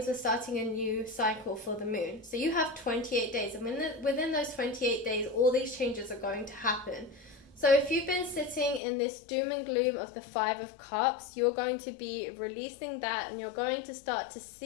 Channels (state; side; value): drops out; right; at 8.8 s